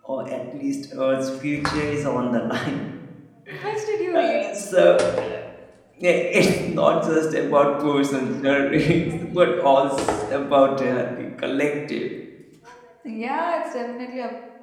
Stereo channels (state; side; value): identical; both; correlation 1.00